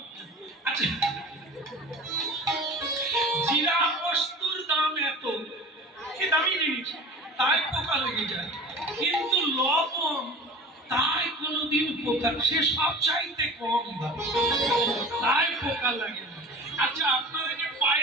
আচ্ছা, জিরা বস্তুর দাম এত, কি দামি জিনিস, তাই পোকা লেগে যায়, কিন্তু লবণ তাই কোনোদিন পোকা, সে সব চাইতে কম দাম, তাই পোকা লাগে না। আচ্ছা, আপনারা যে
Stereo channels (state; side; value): normal; both; correlation 0.39